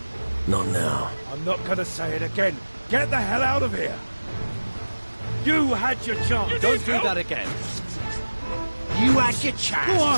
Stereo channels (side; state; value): both; inverted; correlation -1.00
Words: Not now. I'm not gonna say it again. Get the hell out of here! You had your chance! Don't do that again! You had your